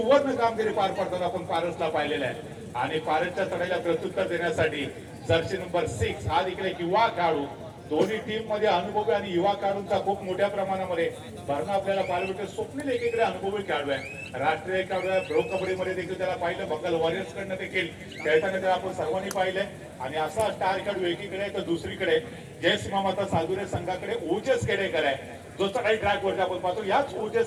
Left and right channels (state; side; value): identical; both; correlation 1.00